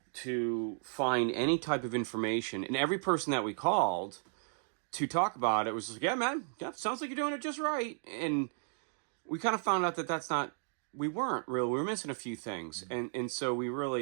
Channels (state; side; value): silent; left; digital silence